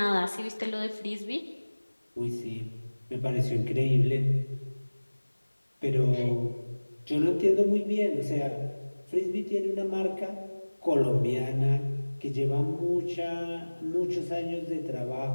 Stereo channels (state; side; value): inverted; both; correlation -1.00